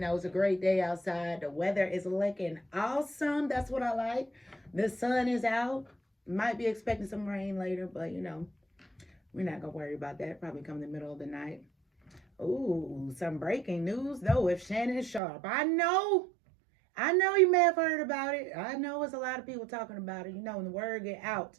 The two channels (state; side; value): drops out; left; at 15.2 s